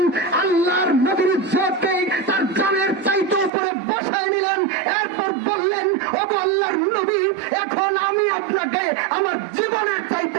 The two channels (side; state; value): left; drops out; at 3.5 s